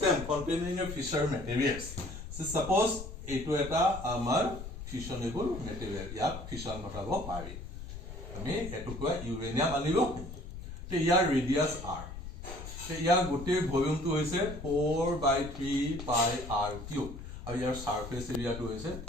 containing a fissure materials so suppose eto eta amar fissionable material ya fission ঘটাব পাৰি আমি এটো কোৱা uranium আনিব তে ইয়াৰ ৰেডিয়াস r ইয়াৰ গোটেই ভলিউমটো হৈছে 4/3 pi r cube আৰু ইয়াৰ সাৰফেস এৰিয়াটো হৈছে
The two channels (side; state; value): left; noise; rumble, 10 dB below the sound